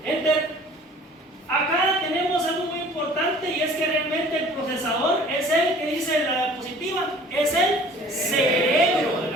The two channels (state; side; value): normal; both; correlation 0.49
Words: Enter. Acá tenemos algo muy importante, y es que realmente el procesador es el que dice la diapositiva, es el cerebro de